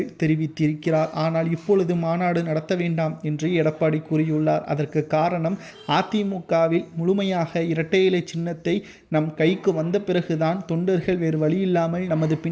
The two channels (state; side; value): identical; both; correlation 1.00